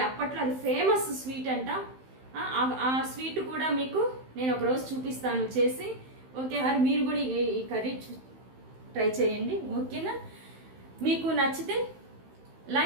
అప్పట్లో అది ఫేమస్ స్వీట్ అంట. ఆ స్వీట్ కూడా మీకు నేను ఒకరోజు చూపిస్తాను చేసి. ఓకే, మరి మీరు కూడా ఈ కర్రీ ట్రై చేయండి. ఓకేనా? మీకు నచ్చితే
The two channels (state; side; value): late; left; 15 ms